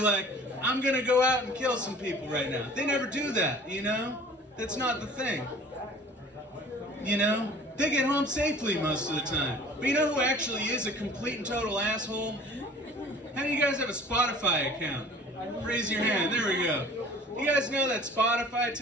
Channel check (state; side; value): normal; both; correlation 0.47